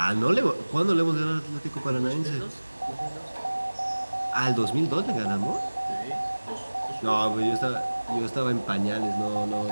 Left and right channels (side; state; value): both; inverted; correlation -1.00